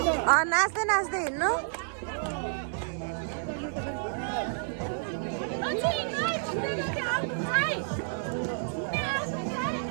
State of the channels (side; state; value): left; silent; 58 dB below the other